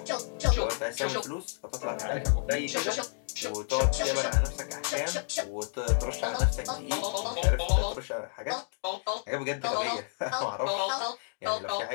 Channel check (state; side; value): silent; right; digital silence